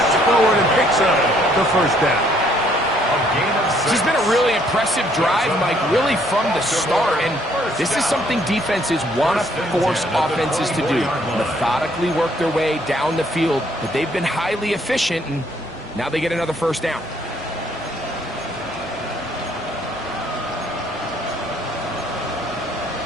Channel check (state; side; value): normal; both; correlation 0.66